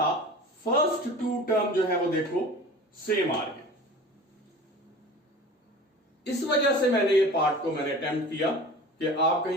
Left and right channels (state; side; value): normal; both; correlation 0.39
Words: फर्स्ट 2 टर्म जो है वो देखो सेम आ रही है। इस वजह से मैंने ये पार्ट को मैंने अटेम्प्ट किया कि आप